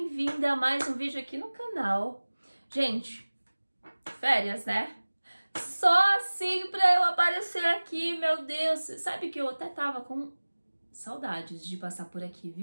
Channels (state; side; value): inverted; both; correlation -1.00